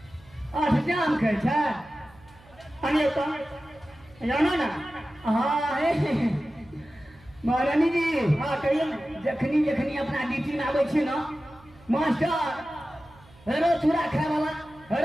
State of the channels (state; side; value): noise; right; hum, 26 dB below the sound